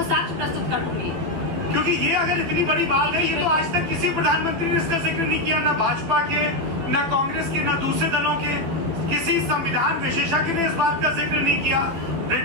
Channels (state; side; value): late; left; 12 ms